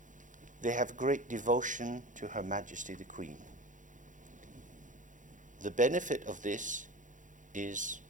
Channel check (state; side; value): late; left; 0.37 ms